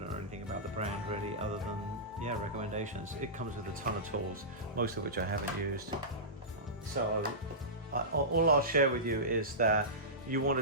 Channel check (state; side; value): normal; both; correlation -0.18